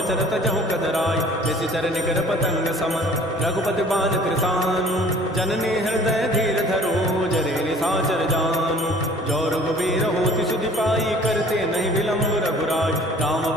तजहु कदराई जैसी चरण कर पतंग समन रघुपति बान कृतानु जननी हृदय धीर धरो जरे निशाचर जानु जो रघुबीर होति सुधि पाई करते नहीं विलंब रघुराय राम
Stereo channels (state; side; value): normal; both; correlation 0.51